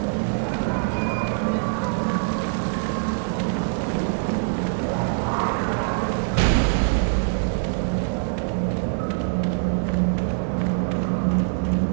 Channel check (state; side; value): silent; left; digital silence